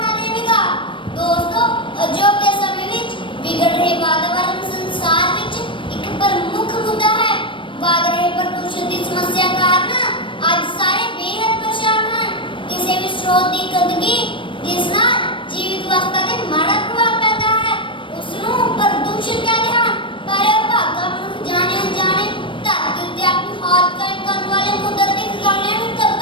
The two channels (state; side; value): late; right; 0.25 ms